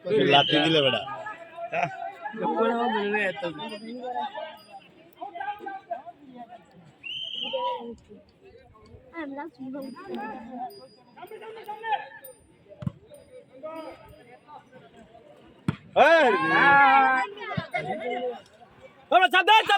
লাঠি দিলে বেড়া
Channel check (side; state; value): both; identical; correlation 1.00